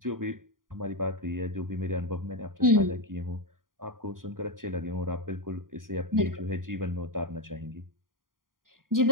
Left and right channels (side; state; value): left; late; 0.90 ms